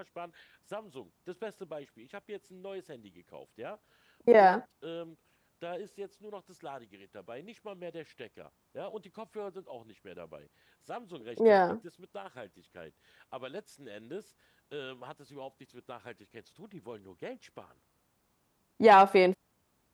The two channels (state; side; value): identical; both; correlation 1.00